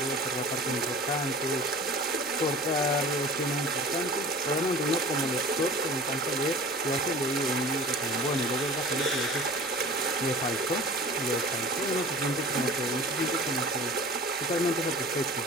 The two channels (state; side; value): noise; left; hum, 29 dB below the sound